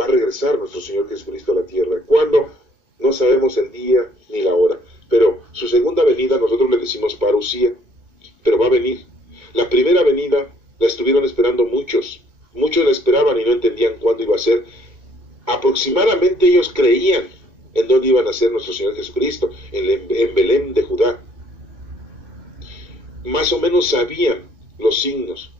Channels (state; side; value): late; left; 2.2 ms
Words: a regresar nuestro Señor Jesucristo a la tierra. ¿Cuándo? No sabemos el día ni la hora, pero su segunda venida nosotros le decimos parusía. pero va a venir. La primera venida la estuvieron esperando muchos la esperaban y no entendían cuándo iba a ser. Aproximadamente ellos creían en dónde iba a nacer nuestro Señor Jesucristo, en Belén de Judá. Más o menos sabían los signos,